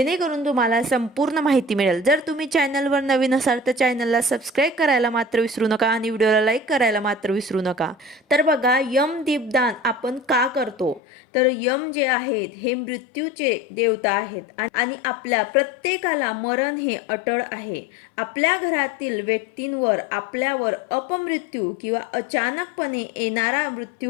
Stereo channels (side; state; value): right; drops out; at 11.0 s